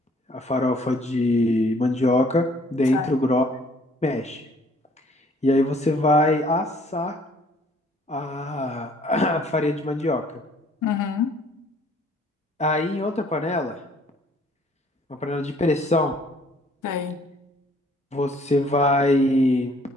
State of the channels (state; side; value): normal; both; correlation 0.59